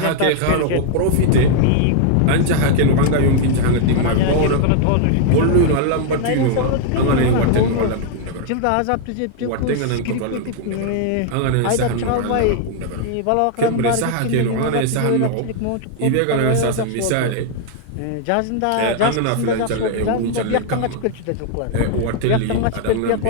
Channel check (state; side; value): different; both; correlation 0.00